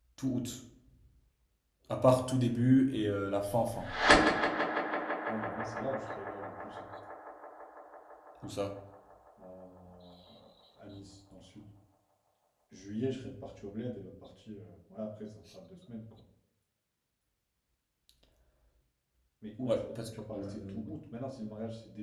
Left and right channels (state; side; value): identical; both; correlation 1.00